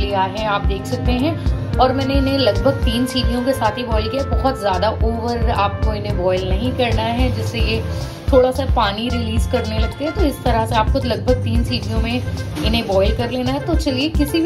है, आप देख सकते हैं। और मैंने इन्हें लगभग 3 सीटियों के साथ ही बॉईल किया। बहुत ज़्यादा ओवर आपको इन्हें बॉईल नहीं करना है, जिससे ये थोड़ा सा पानी रिलीज करने लगते हैं। तो इस तरह से आपको लगभग 3 सीटियों में इन्हें बॉईल कर लेना है। तो चलिए किसी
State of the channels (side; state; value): both; identical; correlation 1.00